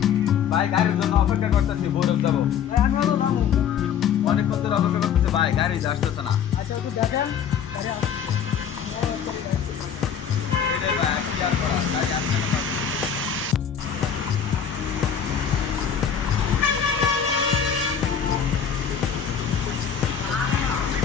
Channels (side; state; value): right; quieter; 7.9 dB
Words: ভাই গাড়ির জন্য অপেক্ষা করতেছি, বরফ যাবো। ভাই আমি হলো যাবো। অনেকক্ষণ ধরে অপেক্ষা করতেছি ভাই, গাড়ি আসতেছে না। আচ্ছা একটু দেখেন। গাড়ি আসছে। এটাই ভাই, কি আর করা, গাড়ি আসতেছে না।